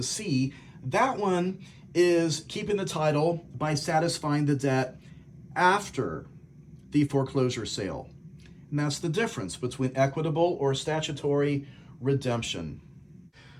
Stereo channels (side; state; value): both; identical; correlation 1.00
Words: C, that one is keeping the title by satisfying the debt after the foreclosure sale. And that's the difference between equitable or statutory redemption.